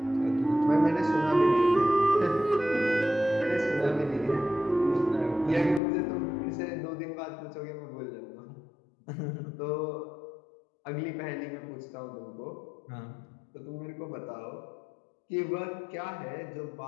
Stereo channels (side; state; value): right; drops out; at 5.8 s